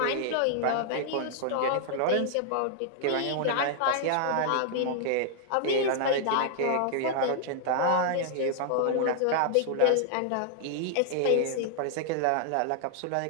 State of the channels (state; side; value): different; both; correlation -0.01